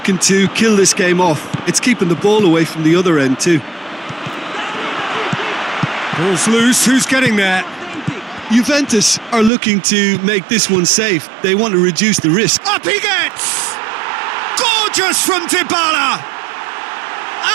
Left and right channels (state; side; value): drops out; left; at 9.5 s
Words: to kill this game off. It's keeping the ball away from the other end too. Ball's loose, who's getting there? Juventus are looking to make this one safe. They want to reduce the risk. Up he gets! Gorgeous from Dybala!